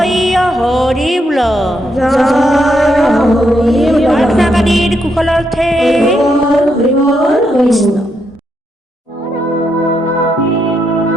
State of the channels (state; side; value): normal; both; correlation 0.79